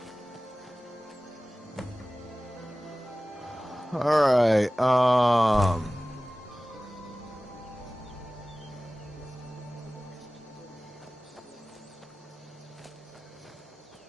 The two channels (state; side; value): normal; both; correlation 0.98